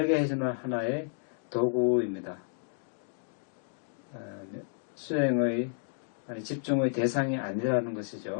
해주는 하나의 도구입니다. 수행의, 집중의 대상이 아니라는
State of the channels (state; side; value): silent; right; 57 dB below the other